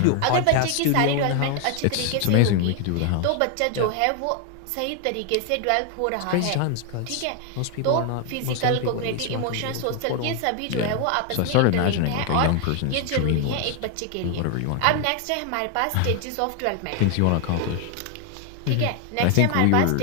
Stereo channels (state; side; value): different; both; correlation 0.00